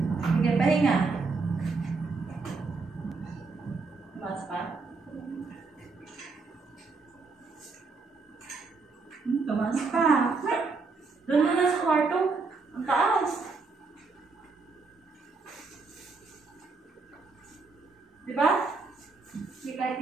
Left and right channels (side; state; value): left; quieter; 4.2 dB